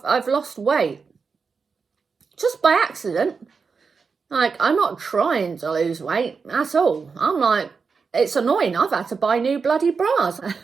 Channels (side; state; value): left; quieter; 5.2 dB